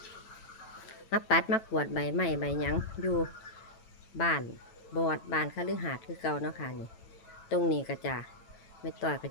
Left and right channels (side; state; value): right; late; 9.0 ms